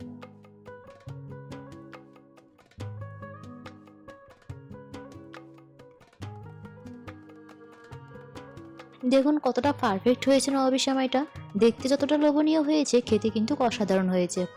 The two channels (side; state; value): both; identical; correlation 1.00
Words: দেখুন কতটা পারফেক্ট হয়েছে নবাবী সেমাইটা। দেখতে যতটা লোভনীয় হয়েছে খেতে কিন্তু অসাধারণ হয়েছে।